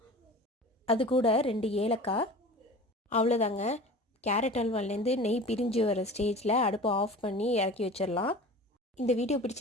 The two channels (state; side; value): normal; both; correlation 0.38